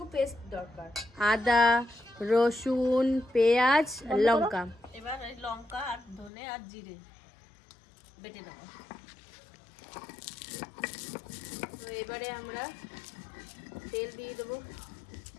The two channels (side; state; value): right; drops out; at 6.3 s